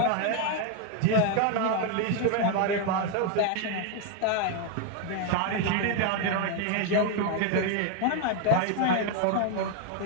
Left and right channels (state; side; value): different; both; correlation 0.01